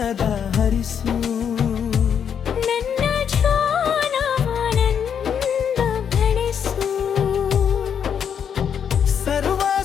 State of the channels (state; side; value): quieter; right; 7.9 dB